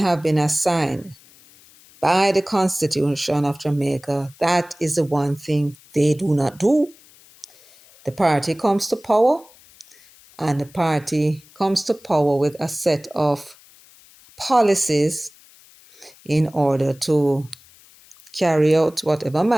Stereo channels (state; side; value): noise; left; hiss, 26 dB below the sound